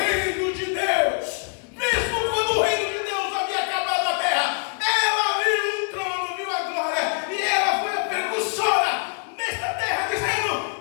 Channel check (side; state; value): right; quieter; 38.7 dB